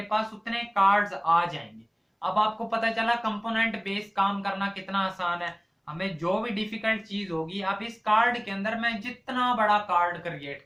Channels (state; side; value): identical; both; correlation 1.00